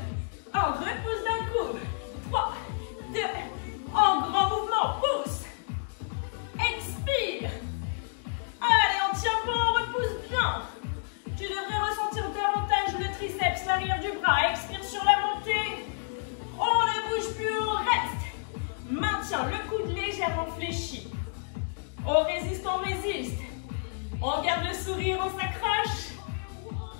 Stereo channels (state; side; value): silent; right; digital silence